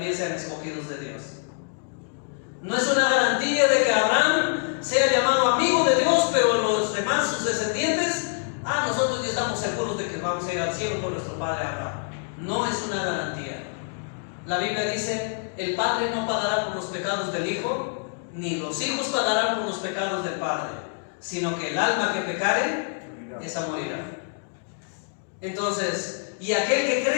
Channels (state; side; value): silent; right; 56 dB below the other